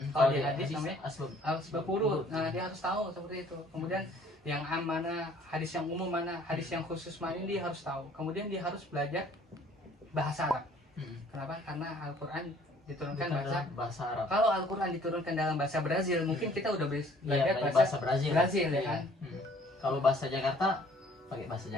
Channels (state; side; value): normal; both; correlation 0.57